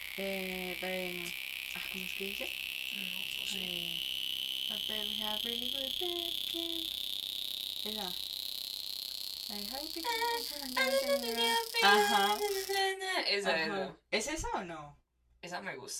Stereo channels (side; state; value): both; identical; correlation 1.00